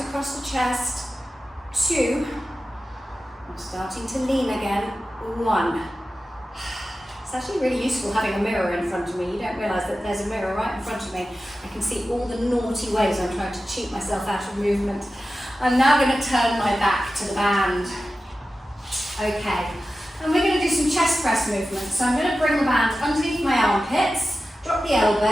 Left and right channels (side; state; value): both; normal; correlation 0.94